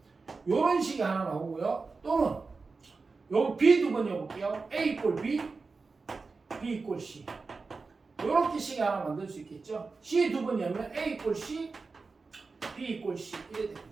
요런 식이 하나 나오고요. 또는 요 B 두 번 해볼게요. A 이꼴 B, B 이꼴 C. 요렇게 식이 하나 만들 수 있겠죠. C 두 번 열면 A 이꼴 C, B 이꼴 C 이래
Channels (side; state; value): left; quieter; 4.2 dB